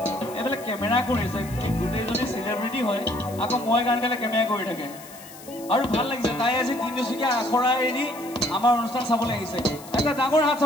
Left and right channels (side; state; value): left; noise; hiss, 18 dB below the sound